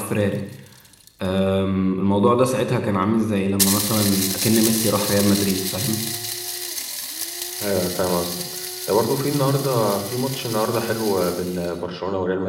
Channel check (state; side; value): identical; both; correlation 1.00